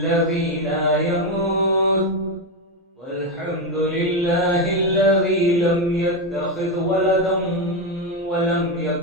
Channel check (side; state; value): both; normal; correlation 0.09